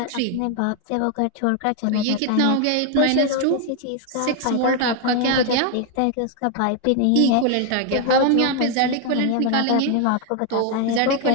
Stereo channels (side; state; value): both; different; correlation 0.01